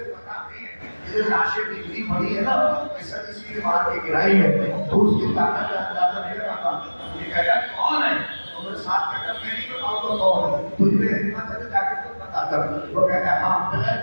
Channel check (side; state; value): both; inverted; correlation -1.00